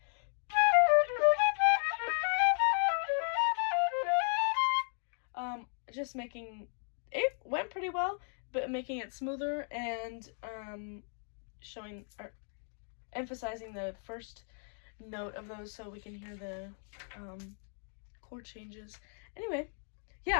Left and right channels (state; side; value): silent; right; 54 dB below the other